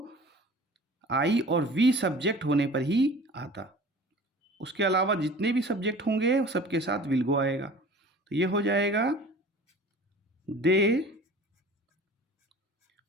आई और वी सब्जेक्ट होने पर ही आता। उसके अलावा जितने भी सब्जेक्ट होंगे सबके साथ विल गो आएगा। तो ये हो जाएगा they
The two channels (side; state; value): both; normal; correlation 0.43